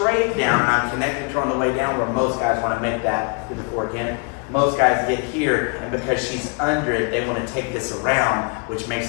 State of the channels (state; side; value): quieter; right; 35.2 dB